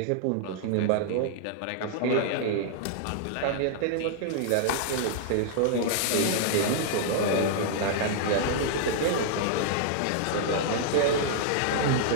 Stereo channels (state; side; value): different; both; correlation -0.01